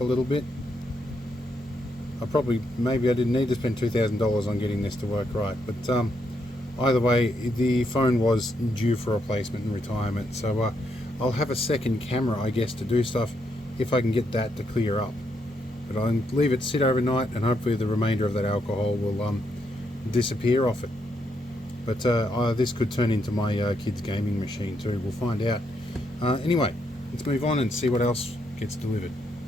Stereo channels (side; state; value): both; normal; correlation 0.78